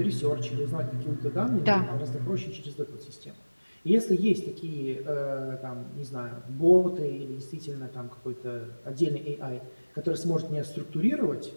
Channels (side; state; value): both; inverted; correlation -1.00